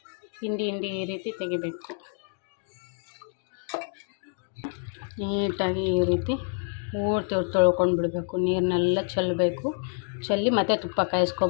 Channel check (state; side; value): silent; right; 60 dB below the other